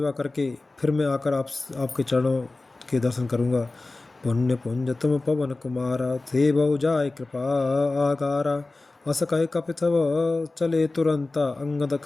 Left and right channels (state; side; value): quieter; right; 3.2 dB